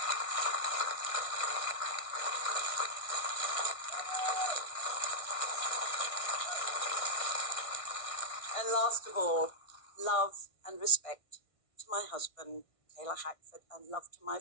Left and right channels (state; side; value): late; right; 1.6 ms